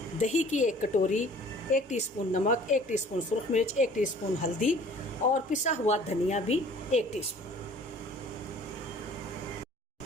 दही की 1 कटोरी, 1 टीस्पून नमक, 1 टीस्पून सुरख मिर्च, 1 टीस्पून हल्दी और पिसा हुआ धनिया भी 1 टीस्पून।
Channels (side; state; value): both; normal; correlation 0.51